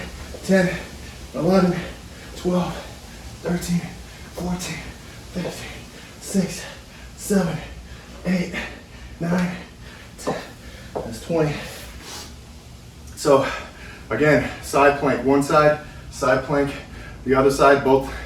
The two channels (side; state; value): both; identical; correlation 1.00